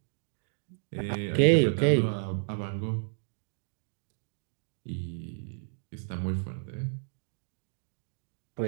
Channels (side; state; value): left; silent; digital silence